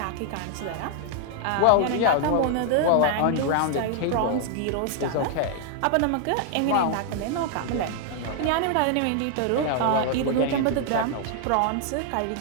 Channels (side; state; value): both; different; correlation 0.00